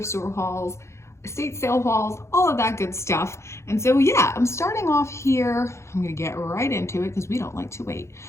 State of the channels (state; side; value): late; right; 0.13 ms